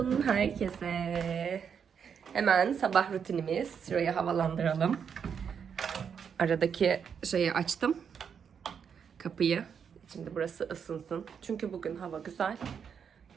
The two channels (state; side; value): quieter; left; 7.1 dB